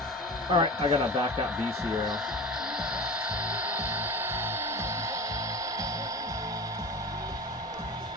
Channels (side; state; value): both; normal; correlation 0.33